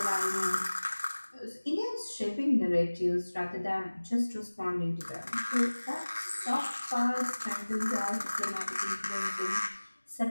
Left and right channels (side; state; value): both; inverted; correlation -1.00